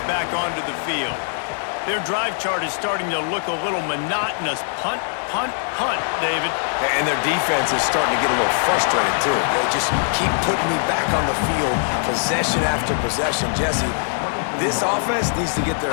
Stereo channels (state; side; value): silent; right; digital silence